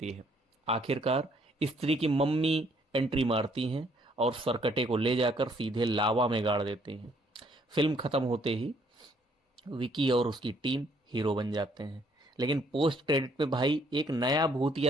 है। आखिरकार स्त्री की मम्मी एंट्री मारती हैं और सरकटे को ले जाकर सीधे लावा में गाड़ देते हैं। फिल्म खत्म होते ही विकी और उसकी टीम हीरो बन जाते हैं, लेकिन पोस्ट क्रेडिट में भाई एक नया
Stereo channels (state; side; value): normal; both; correlation 0.66